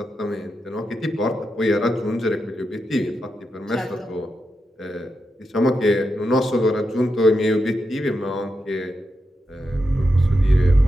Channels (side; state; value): both; normal; correlation 0.87